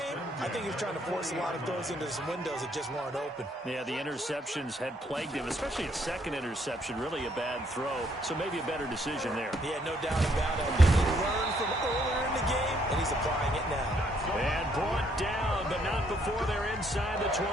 I think he was trying to force a lot of throws into some windows that just weren't open. Yeah, the interceptions had plagued him, especially a second interception, really a bad throw. So maybe a better decision there. Yeah, no doubt about it. I think he learned from earlier in the game, and he's applying it now. And brought down, but not before they're inside the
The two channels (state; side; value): normal; both; correlation 0.69